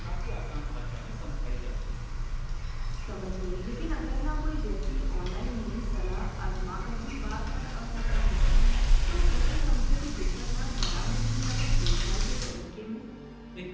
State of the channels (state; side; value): identical; both; correlation 1.00